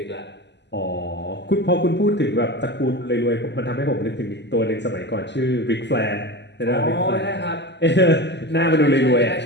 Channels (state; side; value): late; right; 0.51 ms